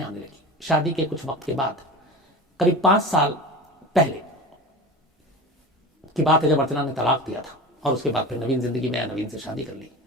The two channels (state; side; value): normal; both; correlation 0.31